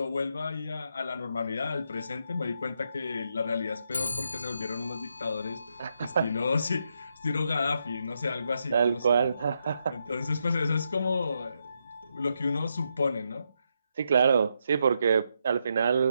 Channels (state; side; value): inverted; both; correlation -0.81